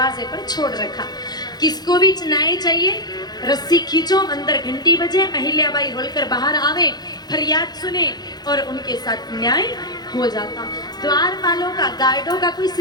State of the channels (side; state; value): right; late; 0.20 ms